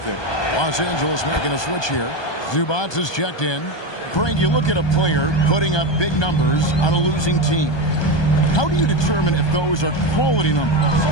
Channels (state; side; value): late; right; 1.2 ms